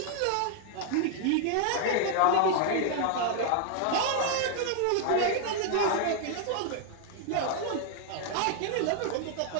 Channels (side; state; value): both; different; correlation 0.00